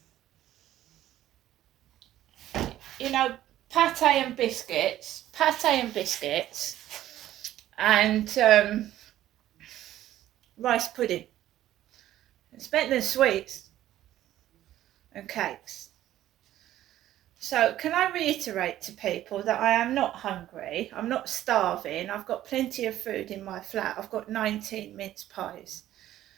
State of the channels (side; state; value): left; quieter; 13.2 dB